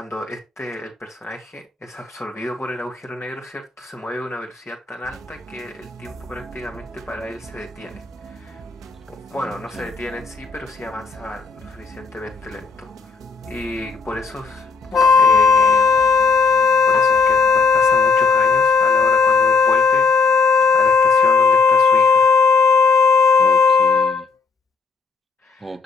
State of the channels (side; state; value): right; quieter; 4.7 dB